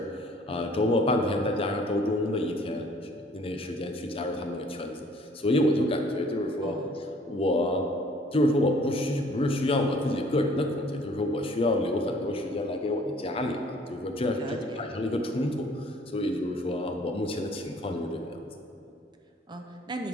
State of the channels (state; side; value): normal; both; correlation 0.57